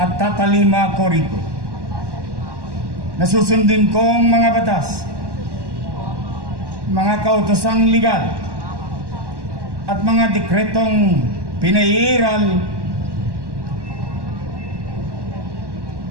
tatalima ko rito. Nasusundin kong mga batas, mga kautosang legal at mga dekretong pinairal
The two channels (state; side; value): late; left; 1.1 ms